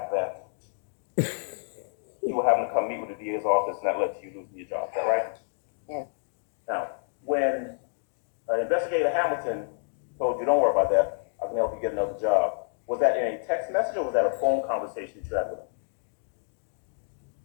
that you were having to come meet with the DA's office and that led to you losing your job. Is that right? Yeah. Now, when Investigator Hamilton told you, don't worry about that, I can help you get another job, was that in a text message or was that a phone conversation that you had with him?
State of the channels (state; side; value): silent; right; 59 dB below the other